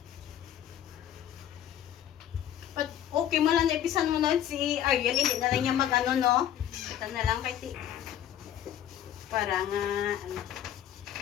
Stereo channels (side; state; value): right; quieter; 10.9 dB